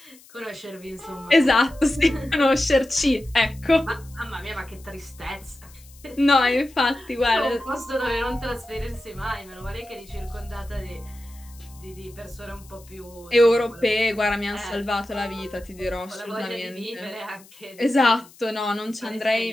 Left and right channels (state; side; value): noise; left; hiss, 24 dB below the sound